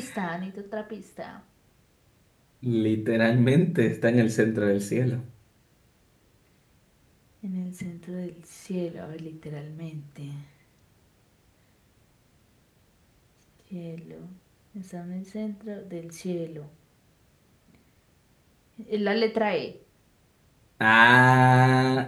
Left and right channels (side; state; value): both; identical; correlation 1.00